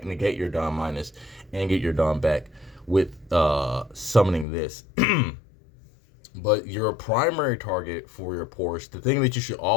your down minus and get your down back with summoning this. But your primary target for your Porsche, the thing that you should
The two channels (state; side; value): drops out; right; at 4.5 s